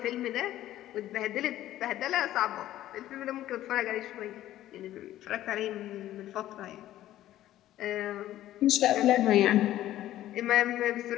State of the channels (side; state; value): right; quieter; 13.6 dB